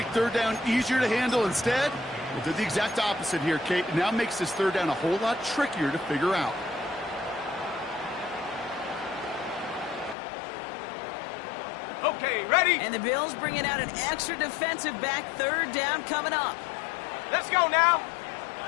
third down easier to handle instead, well, did the exact opposite here, Kate. It now makes this third down a whole lot trickier to figure out. Okay, ready? And the Bills bringing out an extra defensive back. Third down coming up. Let's go now.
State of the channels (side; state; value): right; drops out; at 10.2 s